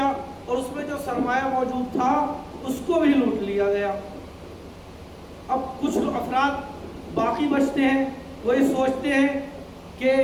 اور اس میں جو سرمایہ موجود تھا اس کو بھی لوٹ لیا گیا۔ اب کچھ افراد باقی بچتے ہیں، وہ یہ سوچتے ہیں کہ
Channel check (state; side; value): identical; both; correlation 1.00